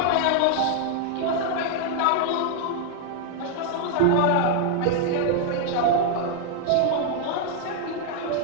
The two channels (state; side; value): different; both; correlation 0.00